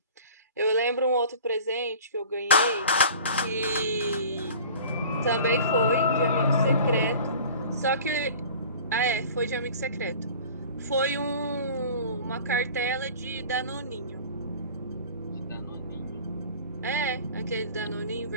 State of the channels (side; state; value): both; inverted; correlation -0.42